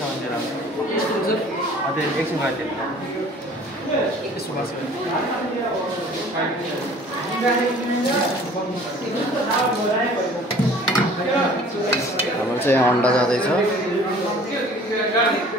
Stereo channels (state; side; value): normal; both; correlation 0.50